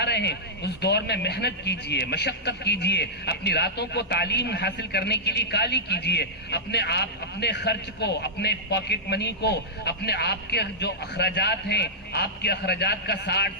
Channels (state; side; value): normal; both; correlation -0.13